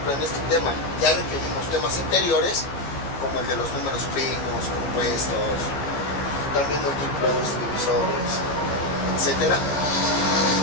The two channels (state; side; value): late; right; 14 ms